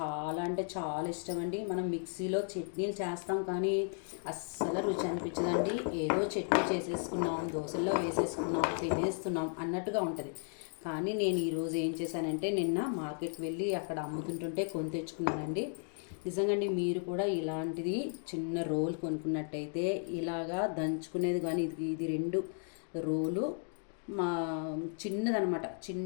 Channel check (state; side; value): silent; right; 55 dB below the other